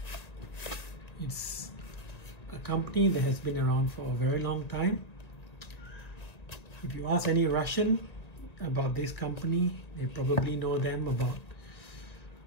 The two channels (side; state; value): right; late; 1.9 ms